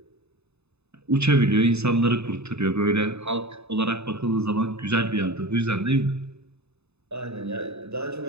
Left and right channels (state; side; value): late; left; 0.80 ms